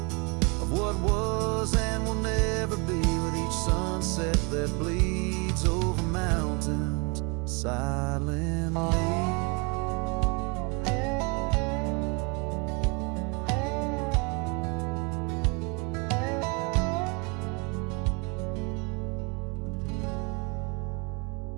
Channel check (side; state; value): left; quieter; 31.0 dB